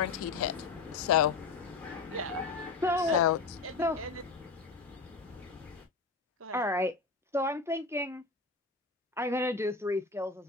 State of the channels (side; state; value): right; quieter; 4.3 dB